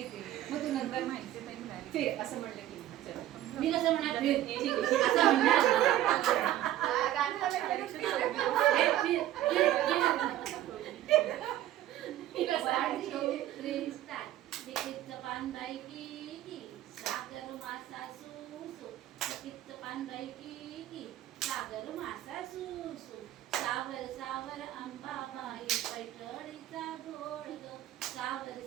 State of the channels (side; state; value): left; quieter; 13.3 dB